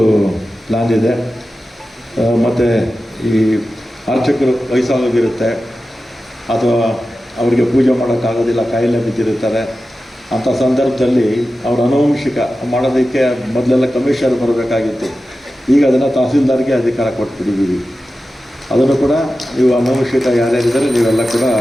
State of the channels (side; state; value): both; normal; correlation 0.93